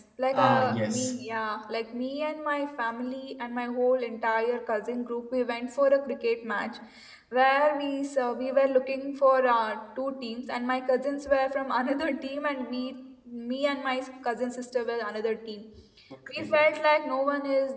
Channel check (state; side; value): identical; both; correlation 1.00